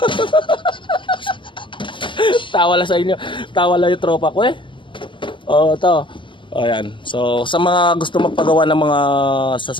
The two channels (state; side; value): late; right; 0.24 ms